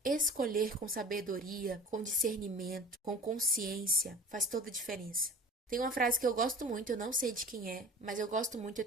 escolher com sabedoria, com discernimento, com consciência, faz toda a diferença. Tem uma frase que eu gosto muito, eu não sei de quem é, mas eu gosto muito, eu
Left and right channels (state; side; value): normal; both; correlation 0.40